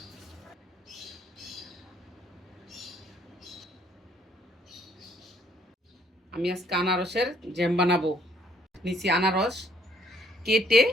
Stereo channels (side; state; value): both; normal; correlation 0.66